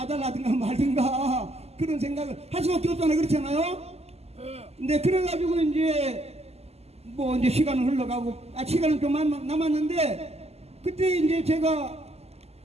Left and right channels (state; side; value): late; left; 0.30 ms